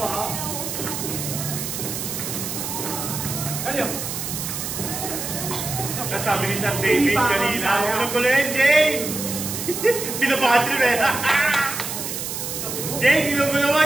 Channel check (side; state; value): right; noise; hiss, 5 dB below the sound